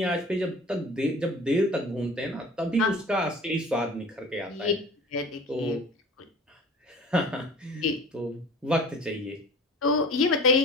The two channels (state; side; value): normal; both; correlation 0.42